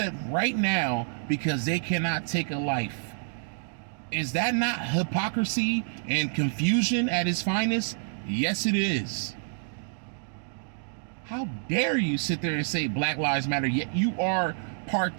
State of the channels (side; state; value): left; silent; digital silence